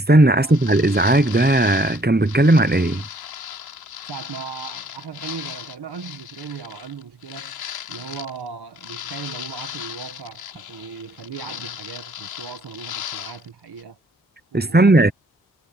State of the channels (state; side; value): normal; both; correlation 0.63